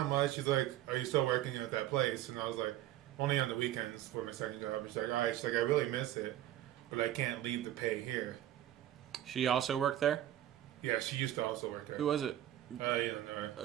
much." She's like, "Are you still working at that place?" And I was like, "Only on the weekends for my second job." And she's like, "All right." She's like, "I really miss it, but I can't leave the pay here." She also worked there. Yeah, she used to also work there. Who was it? You don't know her.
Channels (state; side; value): quieter; left; 13.0 dB